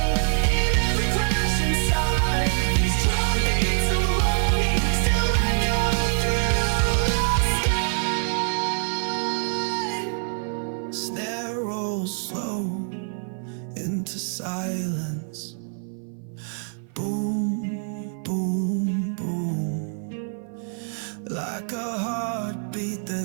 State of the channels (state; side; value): silent; left; 56 dB below the other